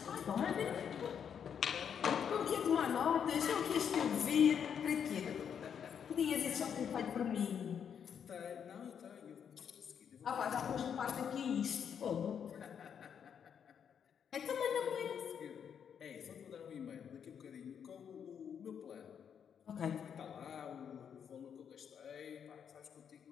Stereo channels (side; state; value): right; quieter; 7.8 dB